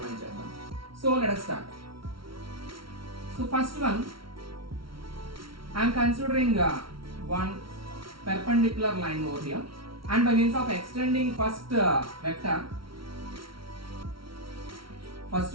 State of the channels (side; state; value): left; late; 0.74 ms